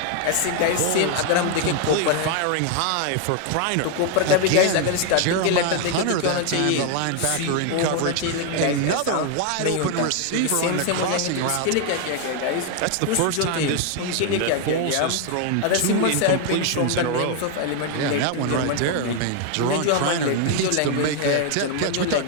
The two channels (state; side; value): different; both; correlation 0.00